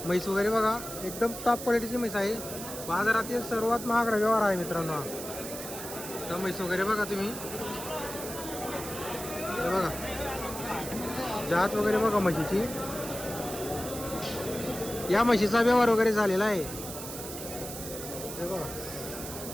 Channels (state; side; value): noise; right; hiss, 9 dB below the sound